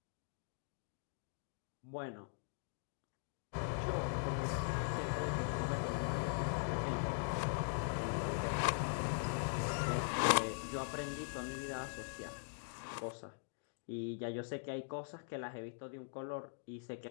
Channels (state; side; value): silent; right; digital silence